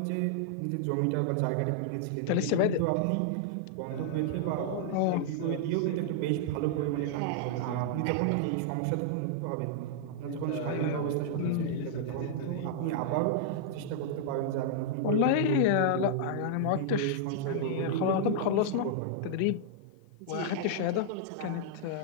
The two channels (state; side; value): different; both; correlation -0.01